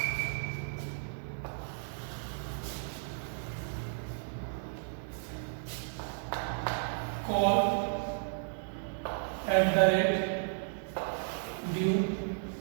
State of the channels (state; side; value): silent; left; digital silence